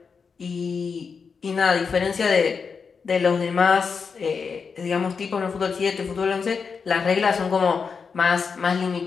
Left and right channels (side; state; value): right; quieter; 5.5 dB